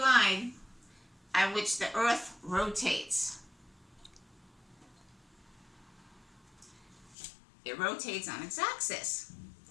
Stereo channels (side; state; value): right; drops out; at 7.2 s